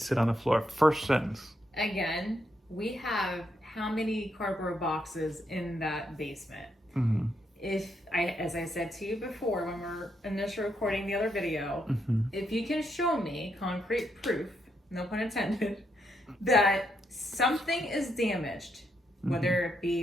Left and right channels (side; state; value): both; normal; correlation 0.79